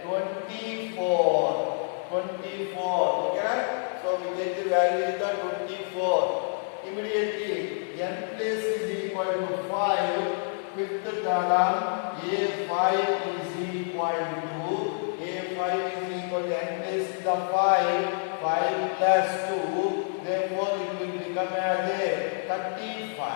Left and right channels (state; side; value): silent; right; 60 dB below the other